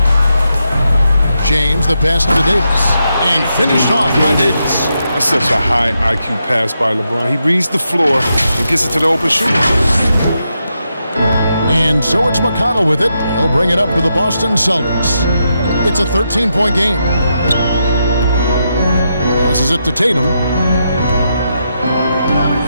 James, the pass to Davis. And finished off by Davis. That's such a high IQ pass by LeBron. He reads the floor and gets it to the open shooter. And so it's McConnell with it. He'll bring it up to the Boston Celtics. It's a 13-point game. Passes it to Tatum.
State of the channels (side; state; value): both; inverted; correlation -0.83